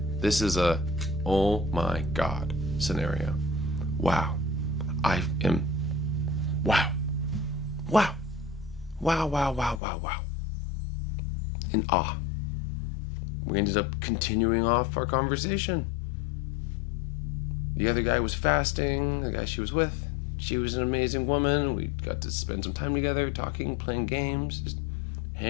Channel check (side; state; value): right; drops out; at 9.8 s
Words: This is a, oh my God scenario. Wow. I am, wow. In awe. We ended up continuing off our conversation. The other guy was fasting, the guy she was with. She was an amazing woman. We got to spend some time together, talking, playing games, just